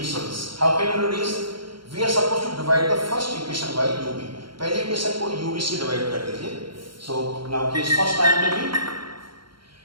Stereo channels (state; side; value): late; left; 0.73 ms